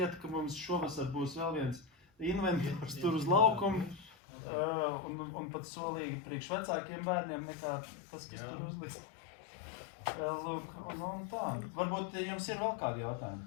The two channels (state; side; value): drops out; right; at 4.1 s